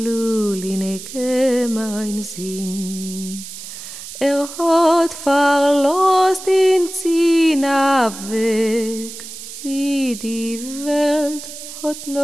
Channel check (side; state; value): right; noise; hiss, 12 dB below the sound